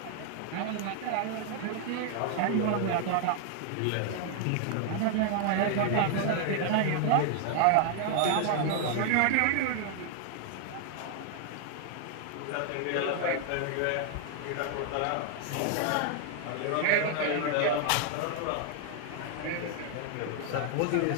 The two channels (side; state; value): both; different; correlation 0.00